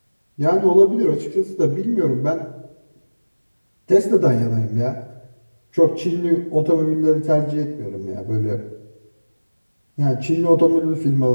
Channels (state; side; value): inverted; both; correlation -1.00